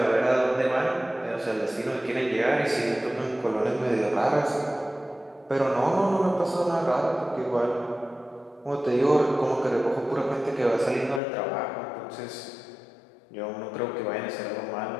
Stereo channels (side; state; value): right; drops out; at 11.2 s